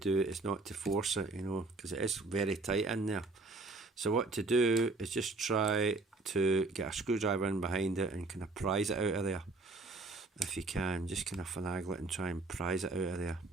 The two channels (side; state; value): left; quieter; 3.4 dB